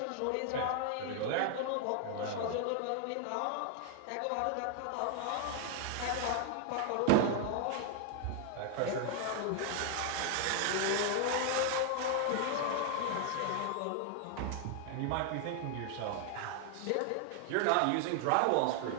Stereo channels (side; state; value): both; different; correlation 0.00